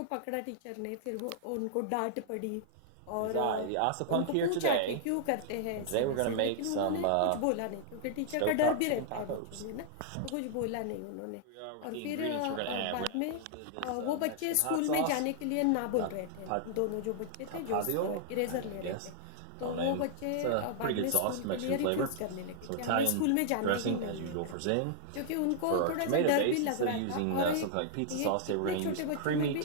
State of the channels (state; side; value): different; both; correlation -0.01